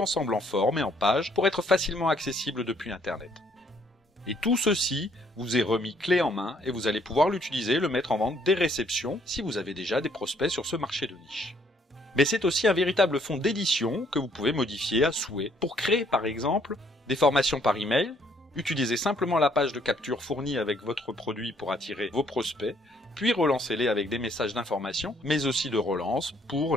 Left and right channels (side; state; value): both; normal; correlation 0.66